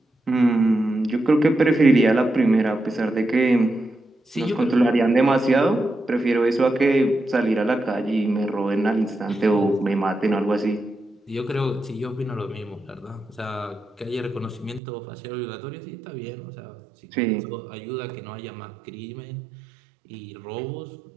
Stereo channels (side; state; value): left; drops out; at 14.8 s